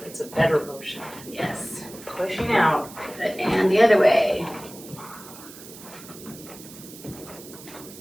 It's a better motion. Yes. Pushing out. And the other way.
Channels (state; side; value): noise; right; hiss, 17 dB below the sound